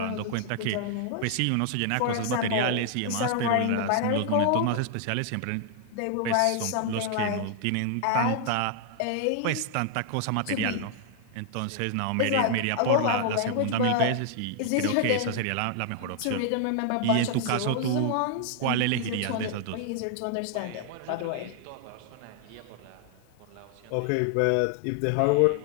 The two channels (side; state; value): both; different; correlation 0.00